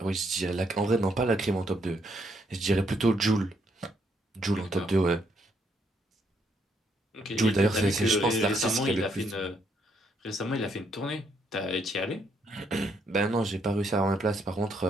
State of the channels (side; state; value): both; normal; correlation 0.73